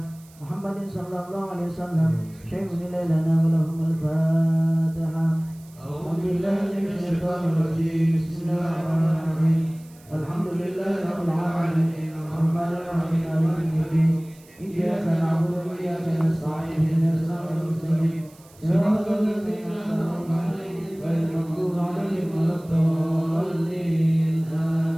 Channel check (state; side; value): noise; right; hiss, 26 dB below the sound